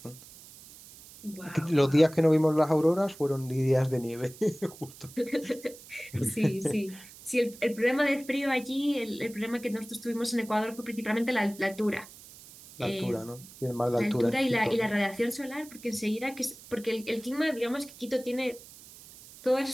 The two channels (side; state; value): right; noise; hiss, 19 dB below the sound